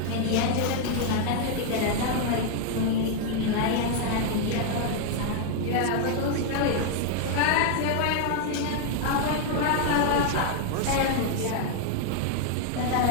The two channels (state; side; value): different; both; correlation 0.00